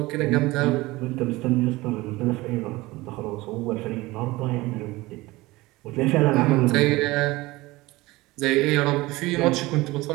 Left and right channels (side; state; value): left; quieter; 20.3 dB